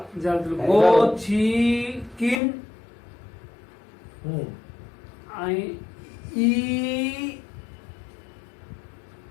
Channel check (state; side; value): drops out; right; at 2.4 s